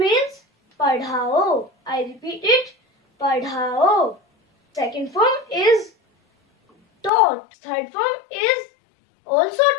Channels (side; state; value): right; drops out; at 7.1 s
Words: padhao. I repeat it, padhao. Second form is taught. Third form is also